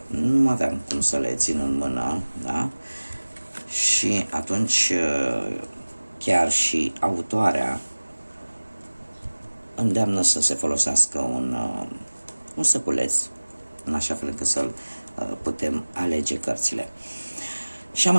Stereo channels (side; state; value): both; inverted; correlation -1.00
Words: nu aveam cum să le țin în mână, da? Și atunci chiar și autoarea îndeamnă să se folosească un săculeț, în așa fel încât să putem alege cărțile. Și am